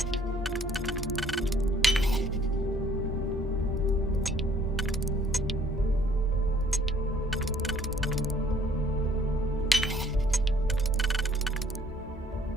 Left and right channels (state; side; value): normal; both; correlation 0.60